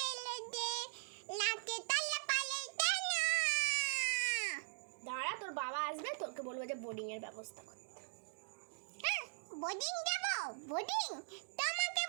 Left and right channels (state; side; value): silent; left; digital silence